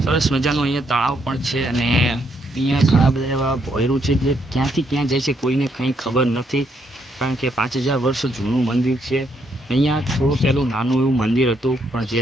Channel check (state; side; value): normal; both; correlation 0.74